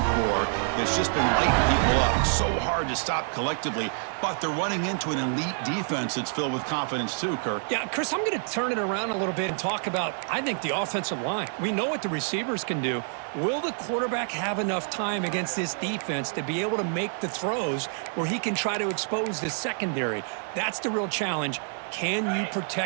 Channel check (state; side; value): silent; left; 60 dB below the other